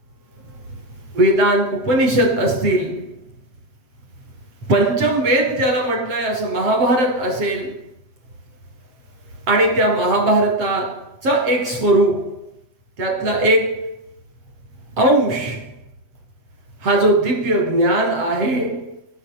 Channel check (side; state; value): left; late; 7.7 ms